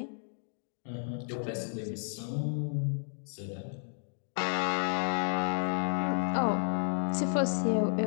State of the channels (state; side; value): silent; right; digital silence